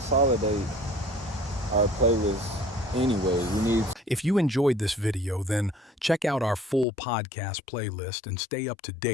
our playlist. Anyways, we need. If you enjoyed this video, then check out our full podcast playlist and stay up to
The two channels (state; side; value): drops out; right; at 6.9 s